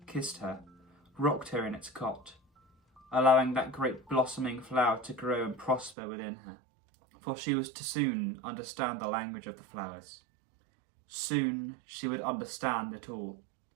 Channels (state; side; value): drops out; left; at 6.0 s